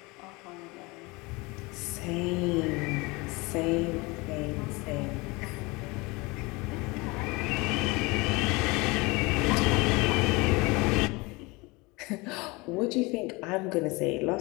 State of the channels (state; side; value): quieter; right; 24.8 dB